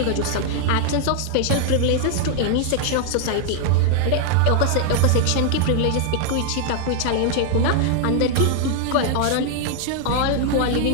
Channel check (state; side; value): different; both; correlation 0.00